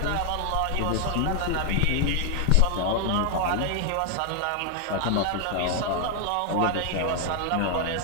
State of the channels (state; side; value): different; both; correlation 0.00